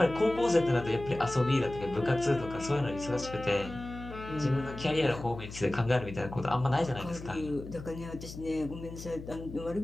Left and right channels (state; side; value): noise; left; hum, 12 dB below the sound